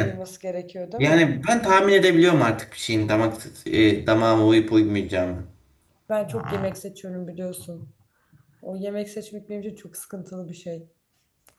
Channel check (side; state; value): both; identical; correlation 1.00